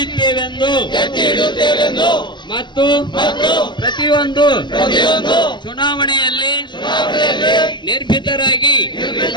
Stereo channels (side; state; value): right; late; 0.22 ms